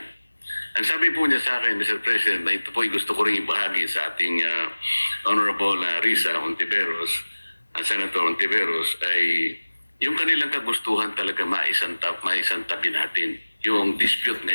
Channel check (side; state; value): both; inverted; correlation -1.00